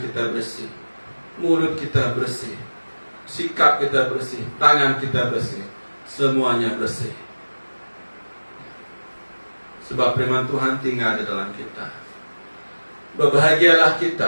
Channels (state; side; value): inverted; both; correlation -1.00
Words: bersih, mulut kita bersih, sikap kita bersih, tangan kita bersih, semuanya bersih. Sebab firman Tuhan tinggal di dalam kita. Berbahagialah